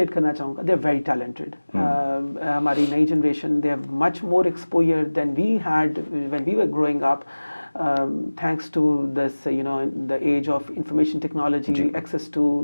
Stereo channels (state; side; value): inverted; both; correlation -1.00